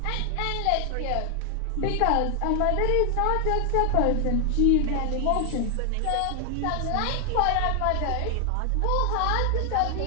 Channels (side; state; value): both; different; correlation 0.00